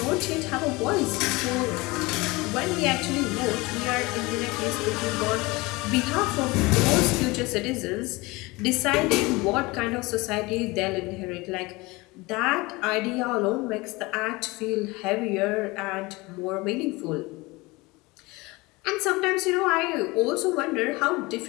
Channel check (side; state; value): right; quieter; 23.2 dB